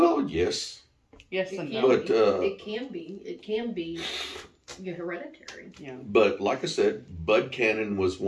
yes. Yes It and can no. But be. It can be hereditary. Yeah. but like I said, Bud Cannon was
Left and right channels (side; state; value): both; identical; correlation 1.00